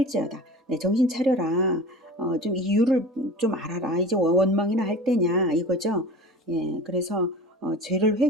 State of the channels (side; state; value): both; normal; correlation 0.36